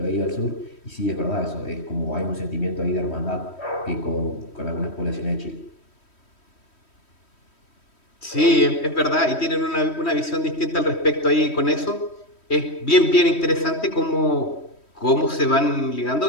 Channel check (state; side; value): late; right; 3.1 ms